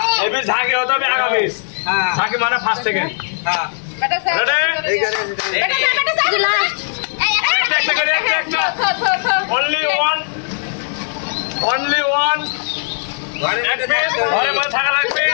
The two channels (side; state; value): right; silent; digital silence